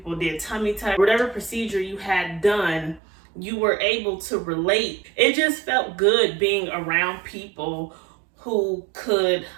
did tummy tuck. Whatever procedure you had done, you were able to relate. It just felt good being around people who could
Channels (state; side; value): drops out; left; at 3.0 s